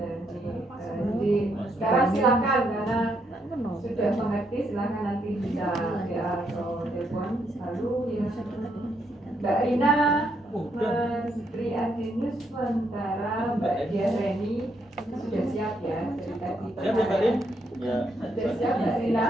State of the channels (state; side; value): normal; both; correlation 0.76